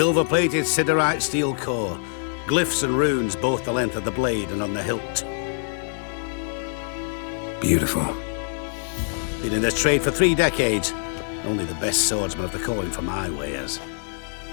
siderite steel core. Glyphs and runes both the length of the blade and on the hilt. Beautiful. Been in this trade for 3 decades. Only the best swordsmen of the calling for my wares.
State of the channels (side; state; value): right; silent; digital silence